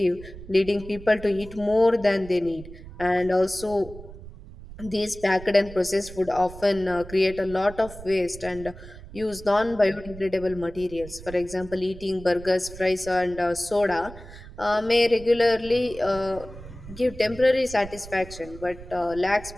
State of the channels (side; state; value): right; noise; rumble, 15 dB below the sound